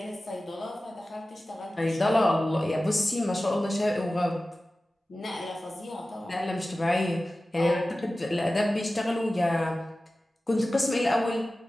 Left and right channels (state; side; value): normal; both; correlation 0.96